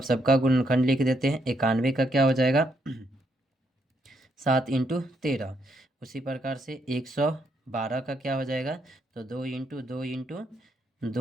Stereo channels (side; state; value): both; normal; correlation 0.76